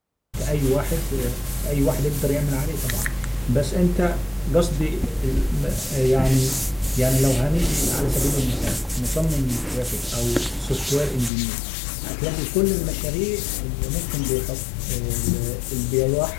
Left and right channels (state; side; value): drops out; right; at 11.3 s